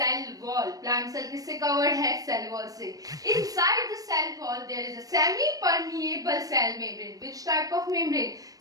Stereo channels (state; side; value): late; left; 0.18 ms